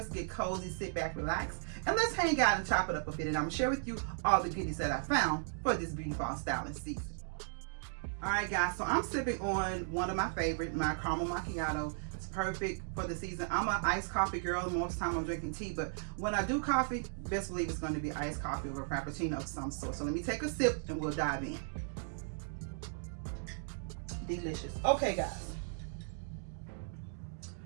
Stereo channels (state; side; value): silent; left; digital silence